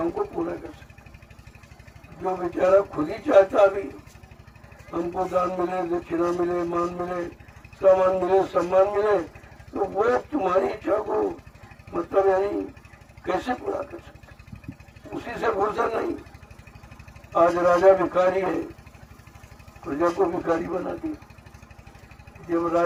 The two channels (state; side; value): identical; both; correlation 1.00